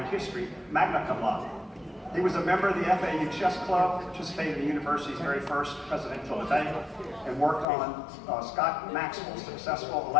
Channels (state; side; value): drops out; right; at 7.7 s